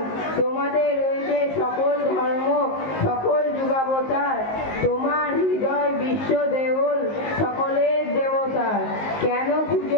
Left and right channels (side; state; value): right; late; 19 ms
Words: তোমাদের রয়েছে সকল ধর্ম, সকল যুগাবতার, তোমার হৃদয় বিশ্ব দেবল, সকলের দেবতার। কেন